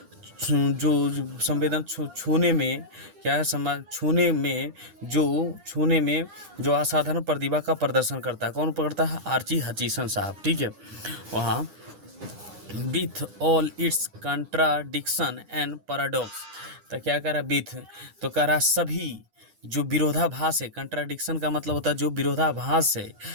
जो छूने में क्या है, छूने में जो असाधारण प्रतिभा का प्रदर्शन करता है। कौन पकड़ता है, आर्ची हचीसन साहब। ठीक है, वहाँ with all it's contradiction and paradox. तो क्या कह रहा है, विथ, तो कह रहा सभी जो विरोधाभास है, कंट्राडिक्शन का मतलब होता है जो विरोधाभास है,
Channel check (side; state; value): left; late; 9.9 ms